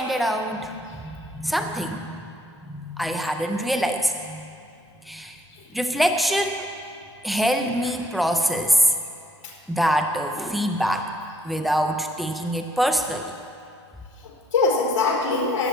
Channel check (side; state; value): both; normal; correlation 0.66